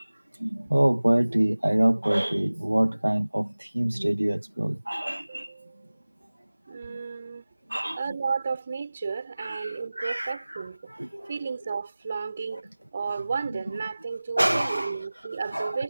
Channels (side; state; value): both; inverted; correlation -0.98